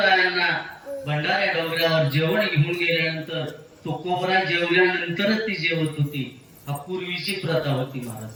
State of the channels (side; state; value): both; identical; correlation 1.00